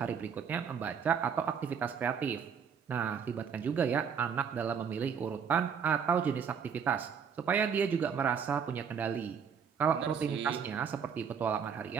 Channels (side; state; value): left; quieter; 6.9 dB